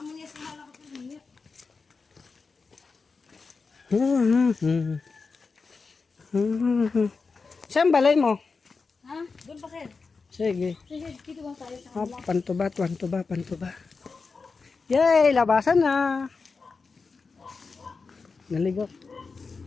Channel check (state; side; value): quieter; right; 4.5 dB